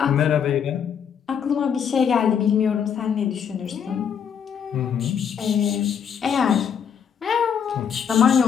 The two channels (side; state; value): right; quieter; 7.7 dB